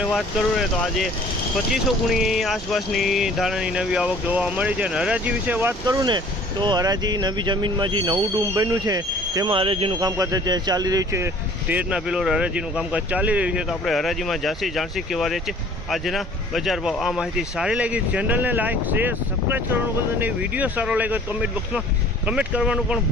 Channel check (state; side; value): normal; both; correlation 0.51